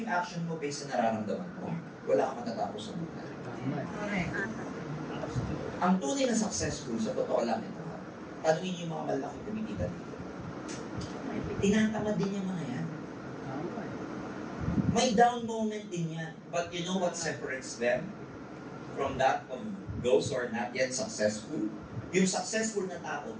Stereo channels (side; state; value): both; identical; correlation 1.00